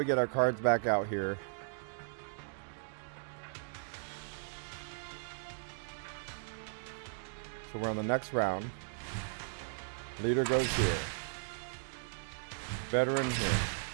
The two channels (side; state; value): left; silent; digital silence